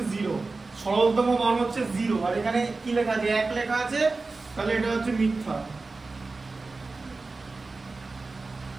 0, সরলতম মান হচ্ছে 0, আর এখানে কি লেখা আছে? 1 লেখা আছে, তাহলে এটা হচ্ছে মিথ্যা।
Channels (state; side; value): quieter; left; 3.7 dB